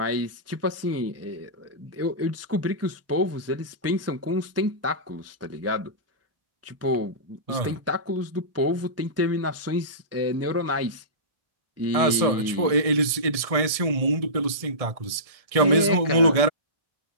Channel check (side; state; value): left; late; 1.6 ms